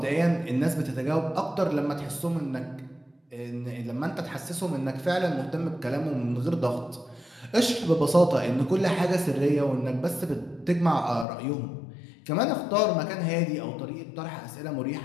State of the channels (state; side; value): drops out; right; at 11.2 s